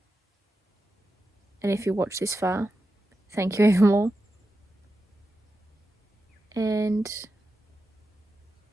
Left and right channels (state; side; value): normal; both; correlation 0.90